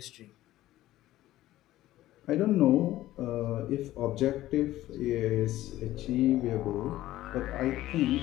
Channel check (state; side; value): quieter; right; 15.1 dB